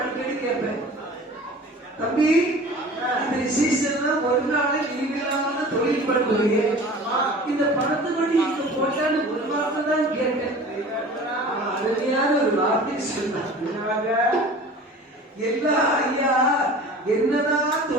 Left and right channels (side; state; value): both; normal; correlation 0.41